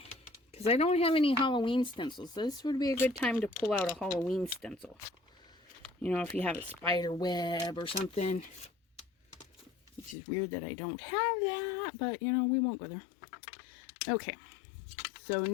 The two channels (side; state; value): right; drops out; at 10.2 s